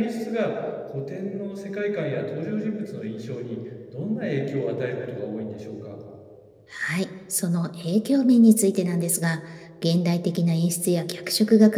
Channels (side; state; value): both; identical; correlation 1.00